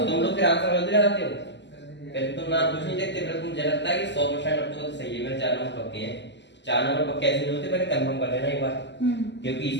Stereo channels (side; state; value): right; late; 0.51 ms